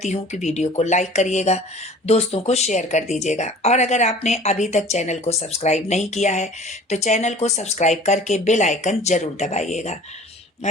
हूँ कि वीडियो को लाइक करिएगा, दोस्तों को शेयर कर दीजिएगा, और अगर आपने अभी तक चैनल को सब्सक्राइब नहीं किया है तो चैनल को सब्सक्राइब करके बेल आइकन जरूर दबाइएगा।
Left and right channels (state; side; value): normal; both; correlation 0.46